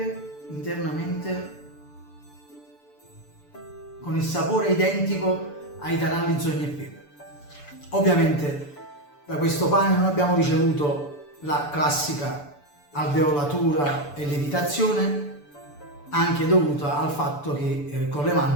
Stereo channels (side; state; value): right; late; 6.9 ms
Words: internamente, con il sapore identico ai taralli, zogni e pepe. Ovviamente da questo pane non abbiamo ricevuto la classica alveolatura e lievitazione, anche dovuta al fatto che con le